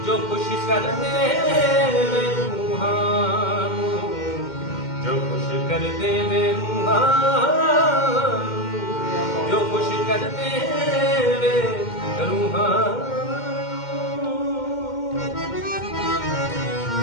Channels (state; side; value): late; right; 2.1 ms